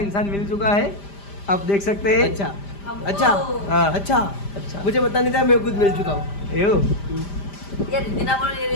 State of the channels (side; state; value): right; late; 5.0 ms